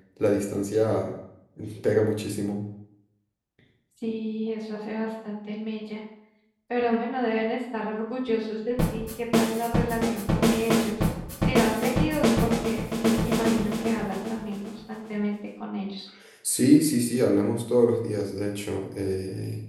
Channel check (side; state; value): both; identical; correlation 1.00